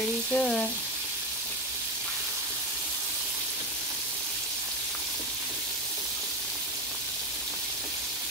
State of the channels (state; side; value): normal; both; correlation 0.16